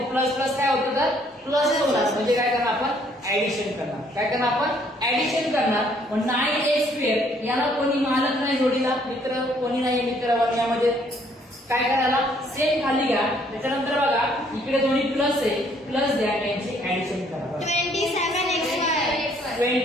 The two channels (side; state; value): both; normal; correlation 0.64